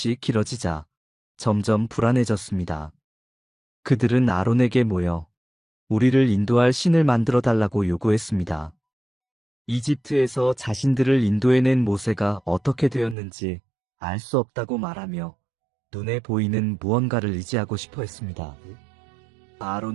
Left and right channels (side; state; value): left; drops out; at 13.2 s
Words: 길어지자 점점 불안해졌습니다. 그들은 아론에게 모여 우리를 인도할 신을 만들어 달라고 요구했습니다. 이집트에서 자신들을 인도해낸 모세가 어떻게 되었는지 알 수 없다고 말하며 눈에 보이는 무언가를 의지하고 싶어 했습니다.